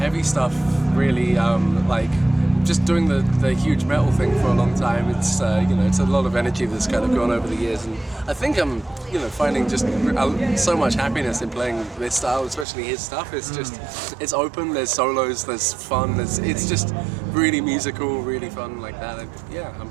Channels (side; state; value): left; drops out; at 12.7 s